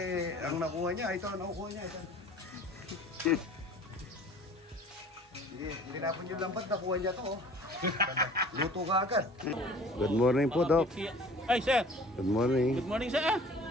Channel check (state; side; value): normal; both; correlation 0.48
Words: ang nakuha niya, ito, nakuha niya. Ito. Tinapon yung lambat, nakuha niya to. Luto ka agad. Good morning po, Doc. Ay, sir. Good morning. Good morning, sir.